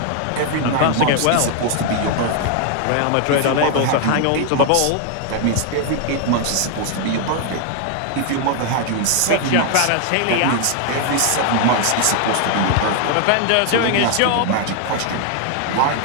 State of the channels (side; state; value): both; different; correlation 0.00